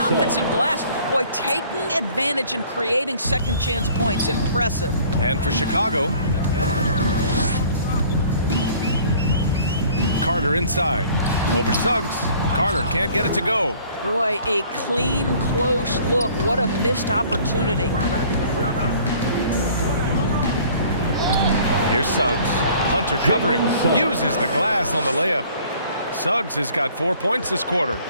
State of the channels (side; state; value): both; inverted; correlation -0.53